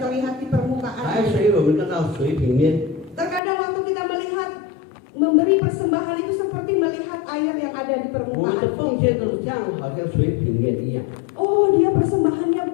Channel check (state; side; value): drops out; right; at 3.4 s